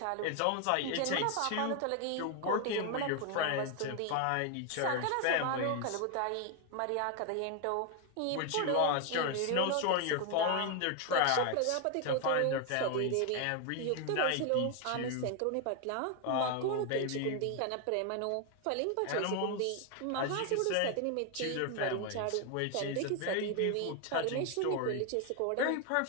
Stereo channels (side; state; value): both; different; correlation 0.01